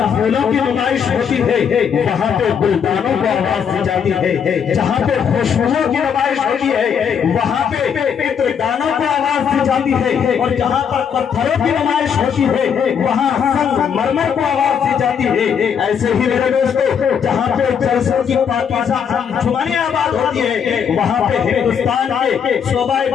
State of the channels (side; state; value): right; quieter; 7.4 dB